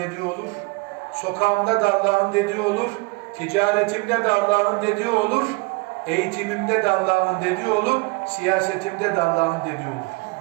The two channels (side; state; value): left; quieter; 27.3 dB